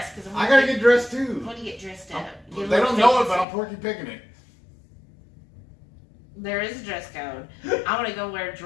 Cause I gotta get dressed too. I want to get dressed up. They don't know it, but I'm Porky Picking it. There is a dress code. I want to go wear a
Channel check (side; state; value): right; drops out; at 3.5 s